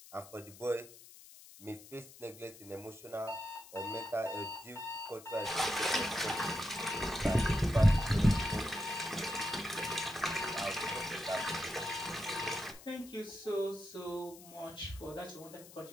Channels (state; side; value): noise; left; hiss, 19 dB below the sound